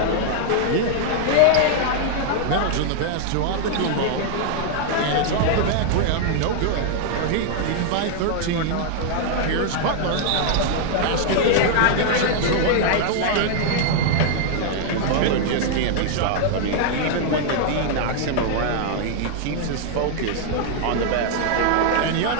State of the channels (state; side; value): different; both; correlation -0.01